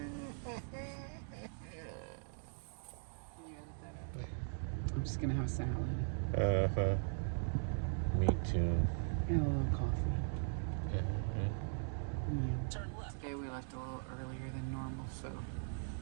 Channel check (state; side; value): silent; left; digital silence